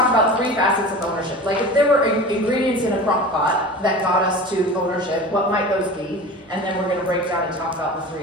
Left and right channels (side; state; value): both; normal; correlation 0.35